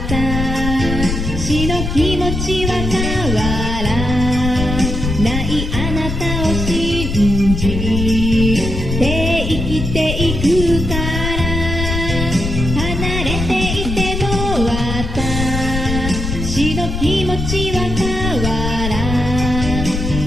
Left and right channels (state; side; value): noise; left; rumble, 3 dB below the sound